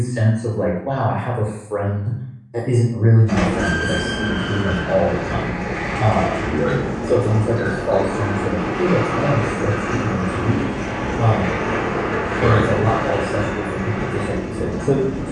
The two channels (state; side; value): identical; both; correlation 1.00